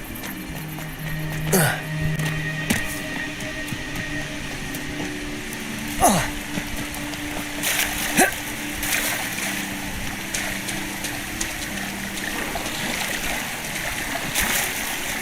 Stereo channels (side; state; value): both; identical; correlation 1.00